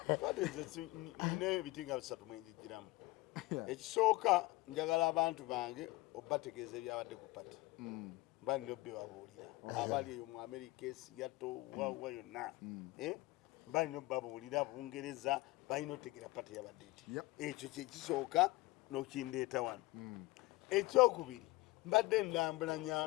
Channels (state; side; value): quieter; right; 20.8 dB